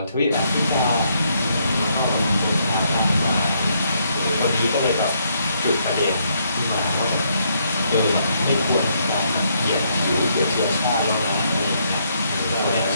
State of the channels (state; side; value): inverted; both; correlation -0.73